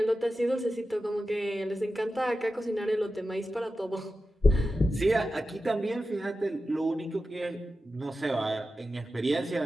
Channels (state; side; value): normal; both; correlation 0.92